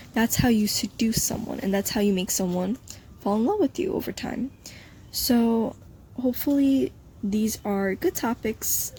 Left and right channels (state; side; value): identical; both; correlation 1.00